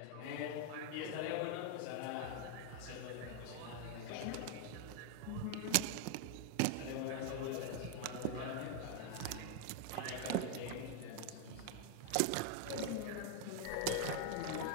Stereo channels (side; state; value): both; different; correlation 0.00